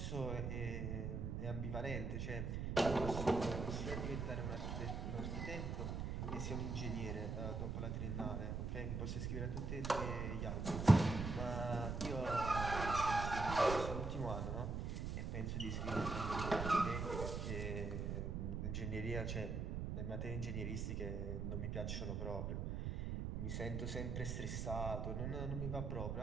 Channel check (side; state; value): right; noise; rumble, 2 dB below the sound